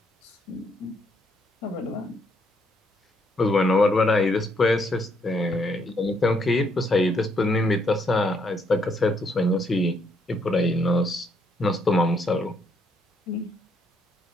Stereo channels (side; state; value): both; normal; correlation 0.72